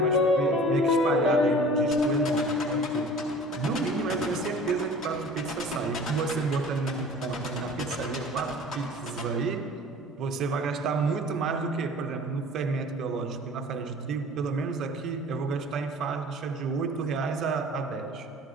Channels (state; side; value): normal; both; correlation 0.44